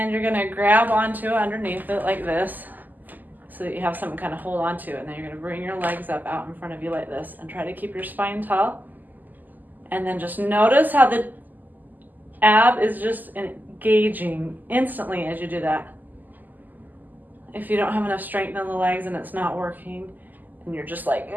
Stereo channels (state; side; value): late; left; 0.085 ms